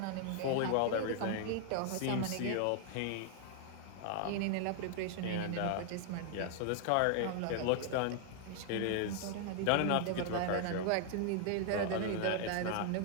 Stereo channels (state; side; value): different; both; correlation 0.00